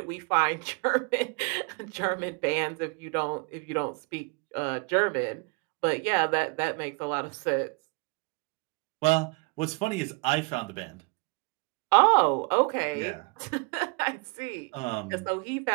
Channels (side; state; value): left; quieter; 31.3 dB